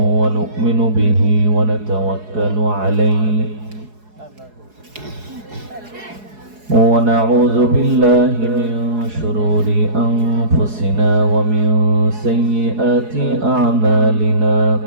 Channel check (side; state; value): left; late; 4.7 ms